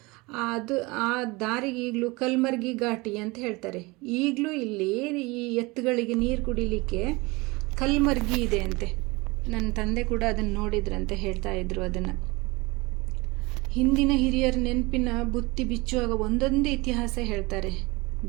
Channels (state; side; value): quieter; left; 24.0 dB